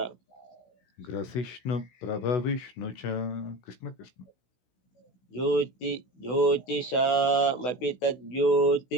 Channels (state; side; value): late; right; 16 ms